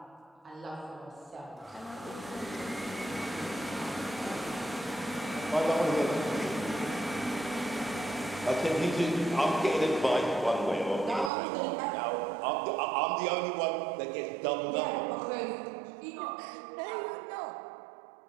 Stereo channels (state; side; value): drops out; left; at 11.3 s